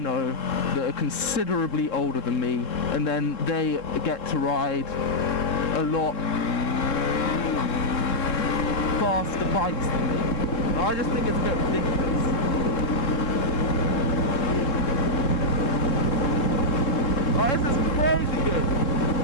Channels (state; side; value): late; right; 3.7 ms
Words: that are considerably older than me, and then they get to ride a lot faster bikes than me. I just think it's a bit ridiculous. Oh, this is crazy good.